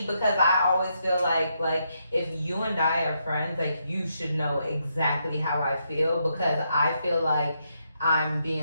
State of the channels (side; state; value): both; inverted; correlation -0.79